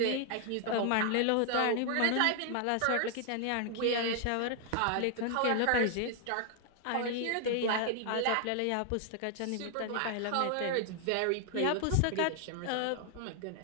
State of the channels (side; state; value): both; different; correlation 0.00